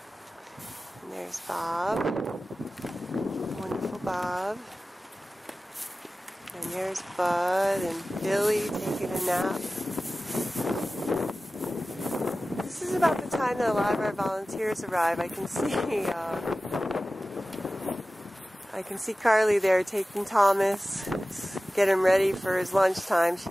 And there's Bob, wonderful Bob. And there's Bud and Billy taking a nap. This is about the time that a lot of our volunteers arrive. I can see Carly there taking Thomas, get him ready for his lunchtime. She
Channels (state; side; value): normal; both; correlation 0.96